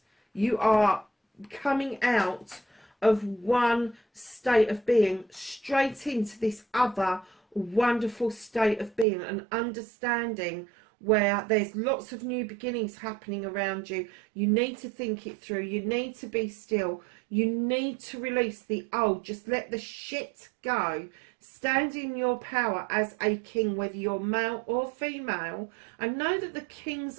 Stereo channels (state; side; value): drops out; left; at 9.1 s